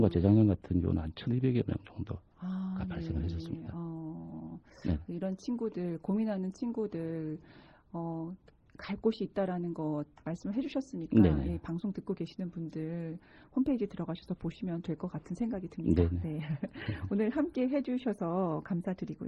재작년 같은 경우는 한 1,200여 명 정도가 발생을 했었습니다. 네. 네. 이런 친구들, 고민하는 친구들, 갈 곳이 있다라는 것 말씀을 해주셨으니까 네네. 예, 방송 듣고 계시는 분들 홈페이지 들어가셔서 보시면 될 것 같은 생각이 듭니다. 네네. 네. 오늘 함께 해주셔서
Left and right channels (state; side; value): identical; both; correlation 1.00